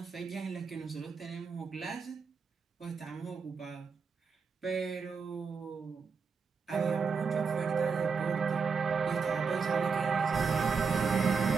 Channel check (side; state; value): left; quieter; 5.4 dB